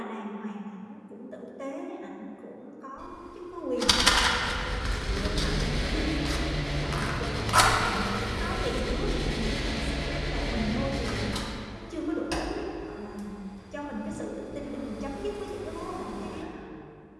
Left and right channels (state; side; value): identical; both; correlation 1.00